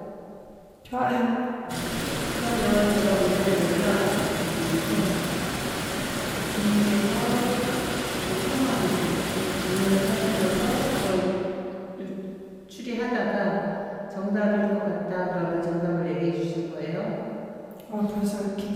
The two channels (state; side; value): identical; both; correlation 1.00